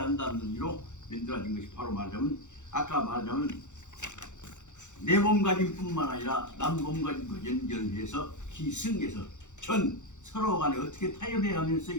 한다는 의미로 만들어진 것이 바로 말하자면 아까 말하자면 내 몸가짐뿐만 아니라 남 몸가짐과 연결해서 기승해서 전 서로 간에 어떻게 타협해 가면서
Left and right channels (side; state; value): right; late; 0.84 ms